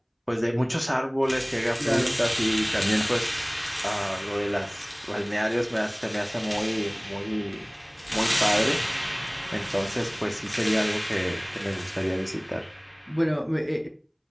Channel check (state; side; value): identical; both; correlation 1.00